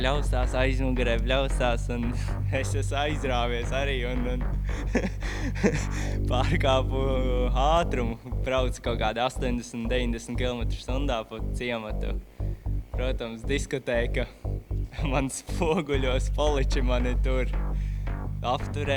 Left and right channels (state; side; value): identical; both; correlation 1.00